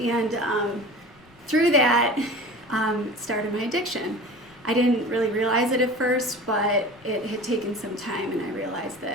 through that, started my addiction. I didn't really realize it at first, but it had taken some time, and I realized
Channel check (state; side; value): noise; left; rumble, 29 dB below the sound